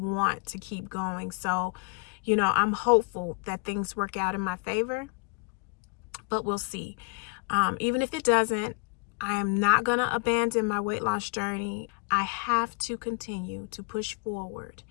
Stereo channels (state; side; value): quieter; right; 34.1 dB